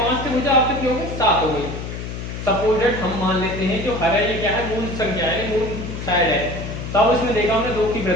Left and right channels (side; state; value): left; noise; hum, 7 dB below the sound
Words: थी भुजा, अब कितनी हो गई? 7 हो गई। सपोजेड हम मान लेते हैं जो हर है ये क्या है? मूल संख्या है, मूल साइड है। तब इसमें देखा हमने 2 की